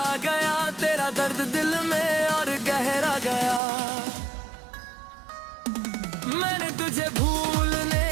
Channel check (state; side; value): drops out; left; at 3.6 s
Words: गया, तेरा दर्द दिल में और गहरा गया। मैंने तुझे भूलने